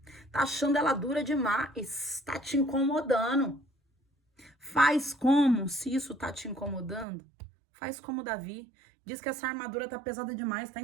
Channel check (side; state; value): left; drops out; at 7.1 s